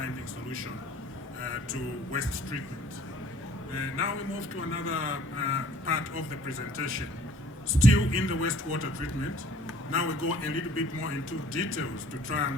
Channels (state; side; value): normal; both; correlation 0.54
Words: solution to waste treatment. Now we move to another part of the presentation, still in the wastewater treatment. Now we go a little bit more into details to try